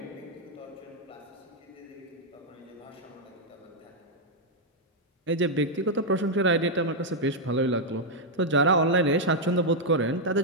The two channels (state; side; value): normal; both; correlation -0.03